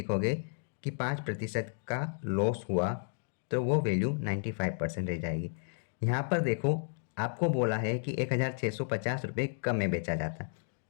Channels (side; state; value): right; silent; digital silence